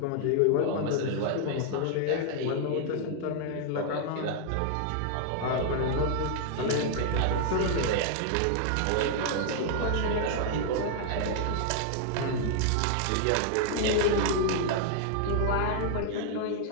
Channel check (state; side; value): different; both; correlation 0.00